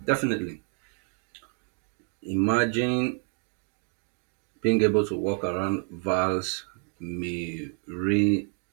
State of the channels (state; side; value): quieter; left; 39.4 dB